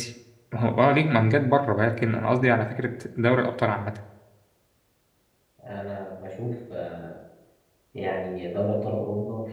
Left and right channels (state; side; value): identical; both; correlation 1.00